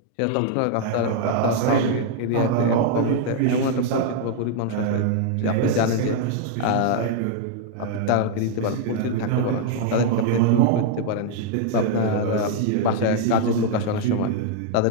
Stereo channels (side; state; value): both; different; correlation 0.00